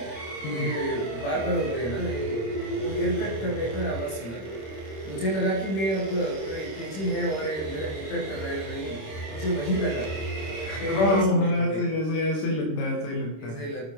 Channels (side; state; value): right; late; 26 ms